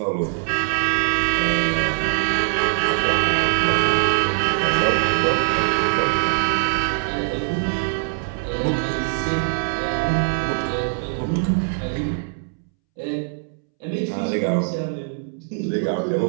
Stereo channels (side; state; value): left; silent; 64 dB below the other